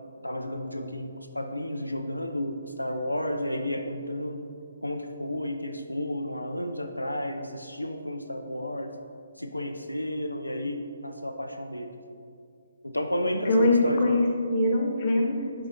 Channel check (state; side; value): inverted; both; correlation -0.80